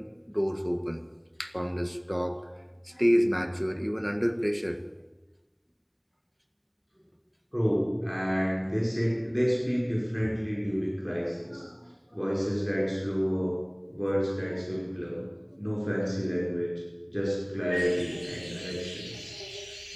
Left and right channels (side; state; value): both; identical; correlation 1.00